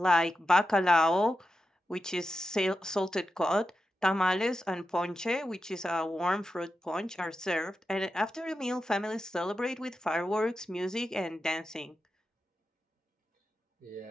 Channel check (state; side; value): normal; both; correlation 0.90